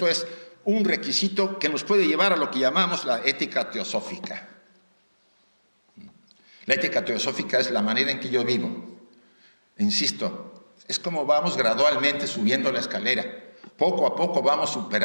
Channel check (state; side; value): inverted; both; correlation -1.00